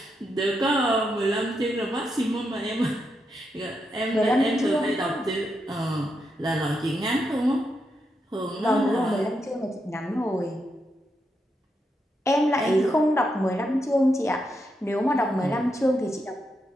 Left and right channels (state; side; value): normal; both; correlation 0.83